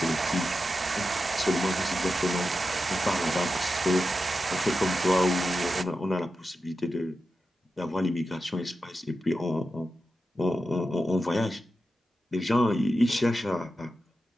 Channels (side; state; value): both; normal; correlation 0.90